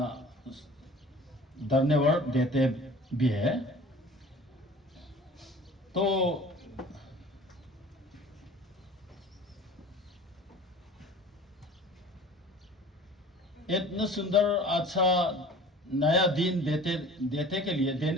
धन्यवाद देते भी है। तो इतना सुंदर अच्छा नया दिन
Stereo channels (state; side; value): normal; both; correlation 0.44